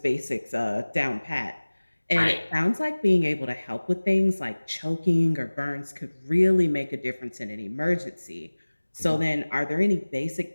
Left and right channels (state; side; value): inverted; both; correlation -1.00